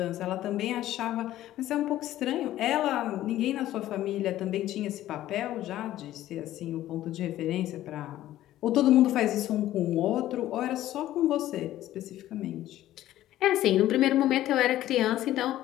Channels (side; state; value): right; quieter; 13.9 dB